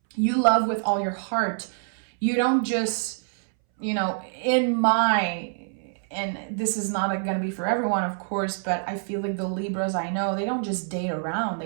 You love with all your heart. You don't just, and this is not going to be for everyone, of course, but I feel like the Libras I know, they don't just date around.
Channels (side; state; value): left; silent; 61 dB below the other